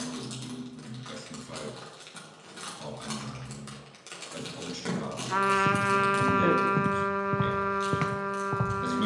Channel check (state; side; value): identical; both; correlation 1.00